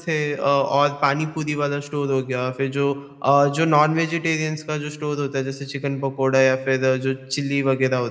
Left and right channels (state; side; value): identical; both; correlation 1.00